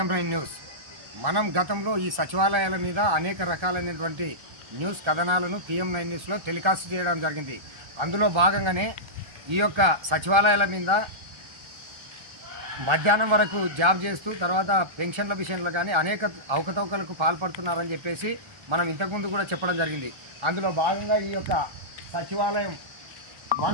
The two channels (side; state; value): left; late; 1.3 ms